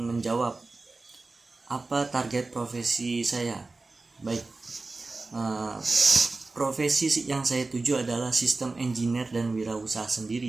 menjawab apa target profesi saya. Baik, profesi yang saya tuju adalah sistem engineer dan wirausaha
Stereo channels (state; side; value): quieter; left; 3.5 dB